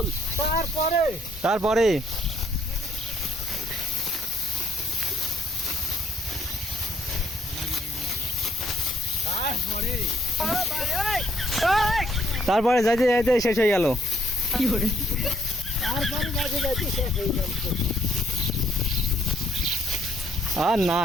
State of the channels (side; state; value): both; normal; correlation 0.68